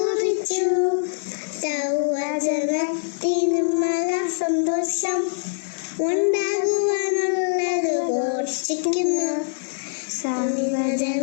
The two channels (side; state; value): right; silent; digital silence